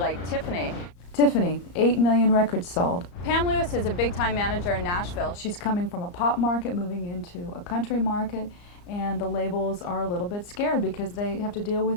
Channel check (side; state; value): right; late; 34 ms